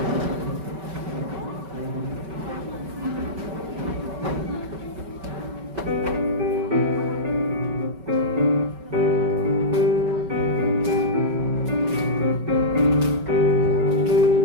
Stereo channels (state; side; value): late; left; 5.2 ms